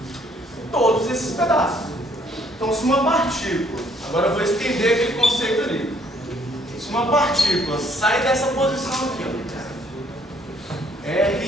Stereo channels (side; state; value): both; normal; correlation 0.64